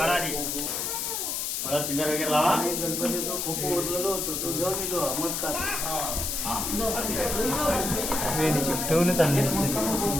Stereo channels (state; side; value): noise; left; hiss, 2 dB below the sound